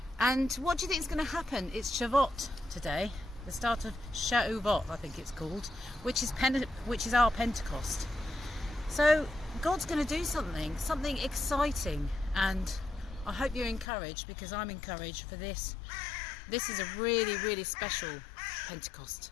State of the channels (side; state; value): right; drops out; at 13.9 s